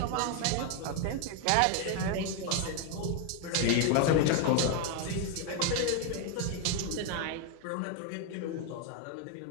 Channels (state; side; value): different; both; correlation 0.01